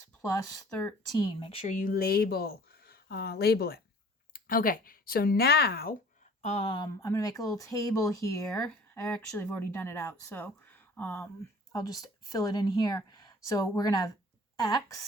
plus 13. Make sure you label it. Okay, so now I'm going to make a little table here. I actually have already done it out, so I'll just fill it in here. So we're going to have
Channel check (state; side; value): normal; both; correlation 0.50